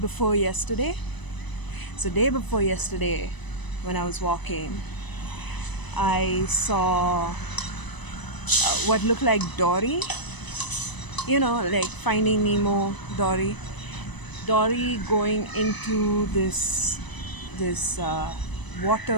yesterday. So day before yesterday, when I was walking, I saw what looked like Dory. You know, like Finding Nemo, Dory. Dory going into this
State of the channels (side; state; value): right; late; 1.0 ms